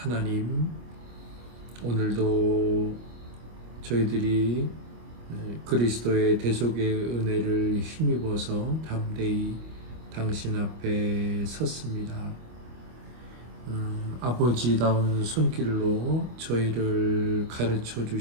오늘도 저희들이 그리스도의 대속의 은혜를 힘입어서 담대히 당신 앞에 섰습니다. 아버지다운 손길로 저희를 가르쳐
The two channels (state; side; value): late; left; 25 ms